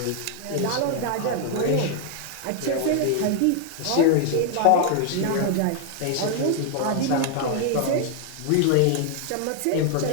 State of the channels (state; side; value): different; both; correlation 0.00